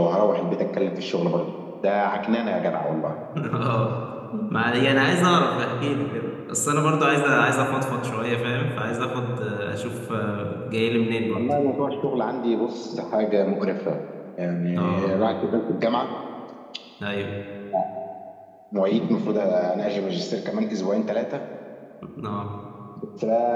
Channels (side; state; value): both; identical; correlation 1.00